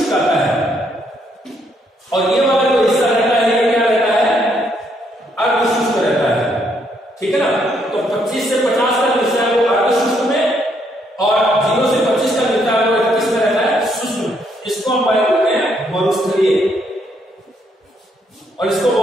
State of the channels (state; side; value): normal; both; correlation 0.72